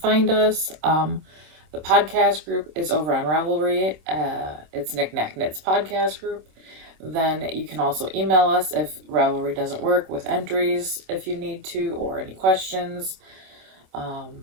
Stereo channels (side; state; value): left; late; 26 ms